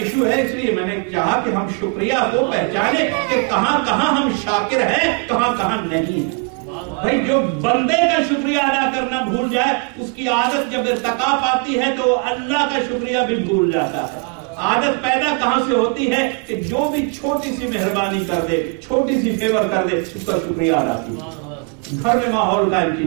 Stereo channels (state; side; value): quieter; left; 34.8 dB